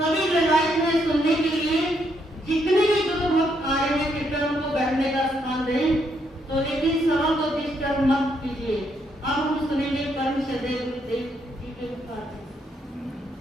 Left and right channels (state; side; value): normal; both; correlation 0.75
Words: सभी रवायत में सुनने के लिए जितने भी गुरु भक्त आ रहे हैं कृपया उनको बैठने का स्थान दें। तो लेकिन सवाल को डिस्टर्ब मत कीजिए। अब हम सुनेंगे परम श्रद्धेय गुरुदेव जी के उपकार।